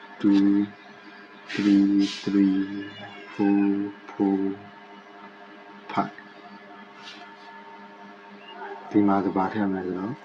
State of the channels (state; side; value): identical; both; correlation 1.00